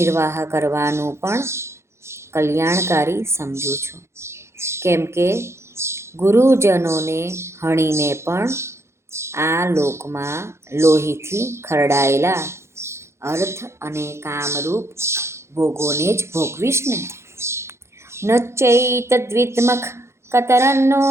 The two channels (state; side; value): late; left; 0.13 ms